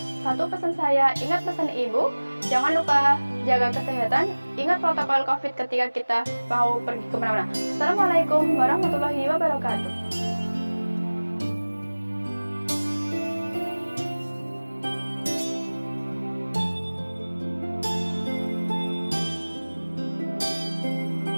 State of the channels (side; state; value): both; inverted; correlation -1.00